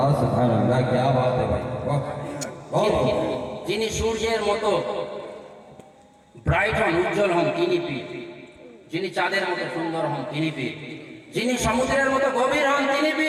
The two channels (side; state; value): both; identical; correlation 1.00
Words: সুবহানাল্লাহ, কি বাত है ভাই। যিনি সূর্যের মতো ব্রাইট হন, উজ্জ্বল হন, তিনি পীর। যিনি চাঁদের মতো সুন্দর হন, তিনি পীর। যিনি সমুদ্রের মতো গভীর হন, তিনি